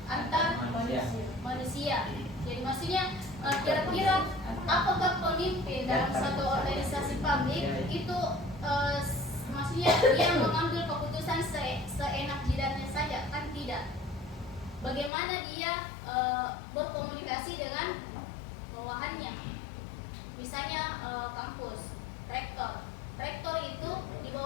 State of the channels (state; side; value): drops out; right; at 15.1 s